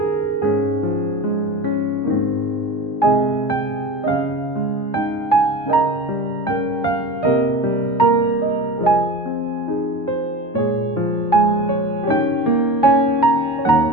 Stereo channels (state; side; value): normal; both; correlation 0.31